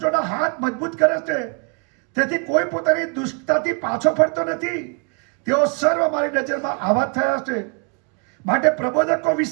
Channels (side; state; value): left; quieter; 37.1 dB